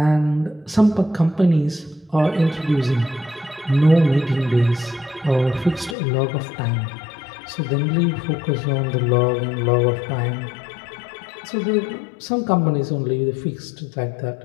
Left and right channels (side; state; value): right; drops out; at 6.0 s